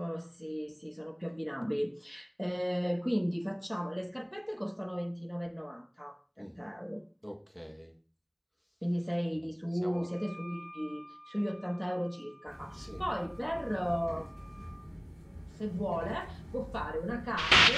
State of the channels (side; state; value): both; identical; correlation 1.00